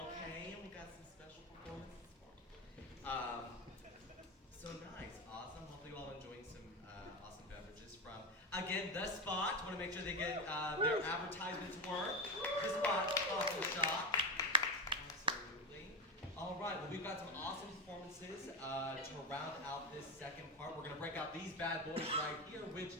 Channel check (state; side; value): normal; both; correlation 0.14